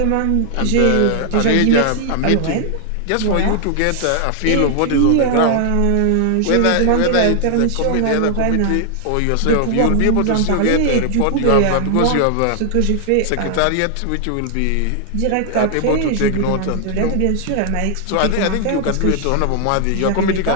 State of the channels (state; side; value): different; both; correlation 0.00